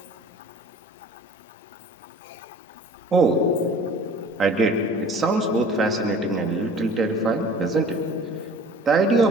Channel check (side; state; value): both; normal; correlation 0.46